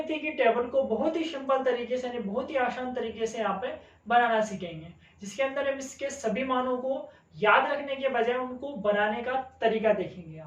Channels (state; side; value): identical; both; correlation 1.00